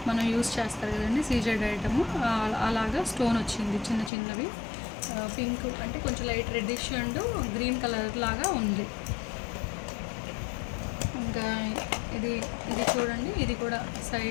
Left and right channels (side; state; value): right; drops out; at 4.1 s